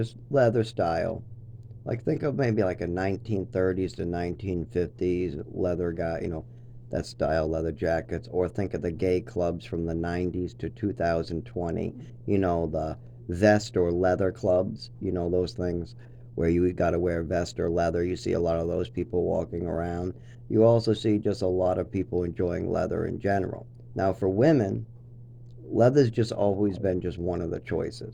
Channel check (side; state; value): both; identical; correlation 1.00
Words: leather style. Like think of maybe like a 1930s to 1950s leather guy, that style leather jackets, or think of the gay clubs from the 90s to 2020, the vest or leather clubs, those things where you got to wear vest or leather. You see a lot of those people walking around. You also see just a lot of people enjoying leather in general. Now, for women, leather's just always been just one of the